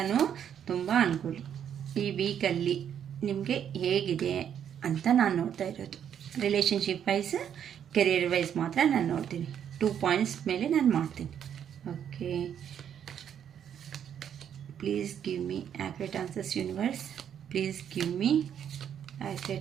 ತುಂಬ ಅನ್ಕೊಳ್ಳಿ. ಈ ವೀಕಲ್ಲಿ ನಿಮಗೆ ಹೇಗಿದೆ ಅಂತ ನಾನು ನೋಡ್ತಾ ಇರೋದು. ರಿಲೇಷನ್ಶಿಪ್ ವೈಸ್, ಕೆರಿಯರ್ ವೈಸ್ ಮಾತ್ರ ನಾನು ನೋಡ್ತೀನಿ. 2 ಪಾಯಿಂಟ್ಸ್ ಮೇಲೆ ನಾನು ಮಾಡ್ತೀನಿ. Okay, please give me accurate answers universe. Please give me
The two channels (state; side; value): quieter; left; 9.0 dB